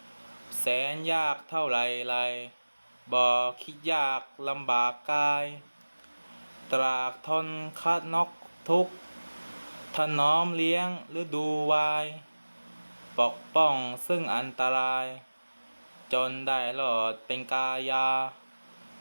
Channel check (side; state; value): both; inverted; correlation -1.00